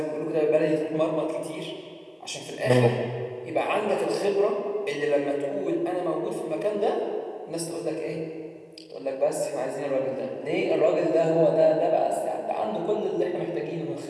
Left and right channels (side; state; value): both; identical; correlation 1.00